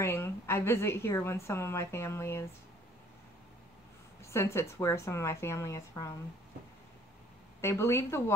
I visit here when some of my family is, since it's where some of my family is from. They believe the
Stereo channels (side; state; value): both; normal; correlation 0.57